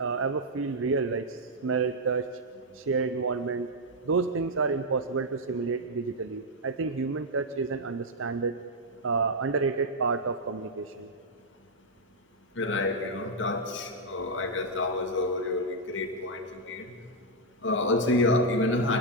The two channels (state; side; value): normal; both; correlation -0.03